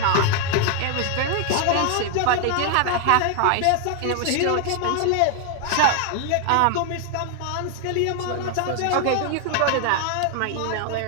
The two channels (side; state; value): both; different; correlation 0.00